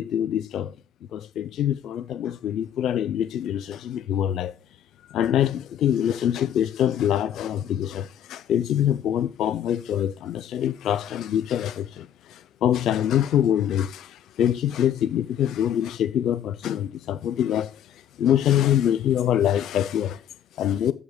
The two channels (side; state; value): right; quieter; 10.1 dB